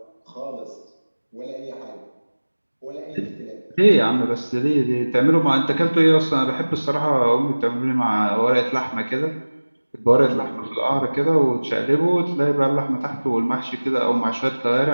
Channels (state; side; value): inverted; both; correlation -1.00